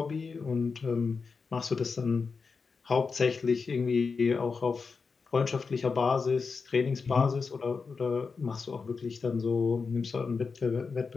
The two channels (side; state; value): right; quieter; 5.0 dB